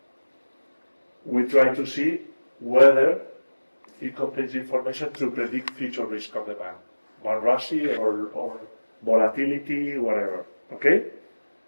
we try to see whether it contains information to predict future risk of the bank, bankruptcy or volatility, whatever. Okay.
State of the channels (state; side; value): inverted; both; correlation -1.00